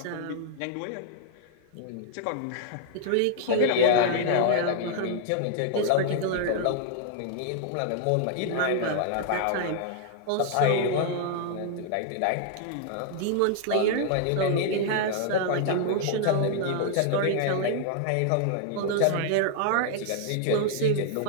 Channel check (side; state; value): both; different; correlation 0.00